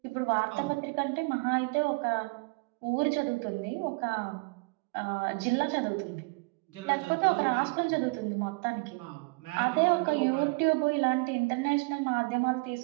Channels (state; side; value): quieter; left; 30.1 dB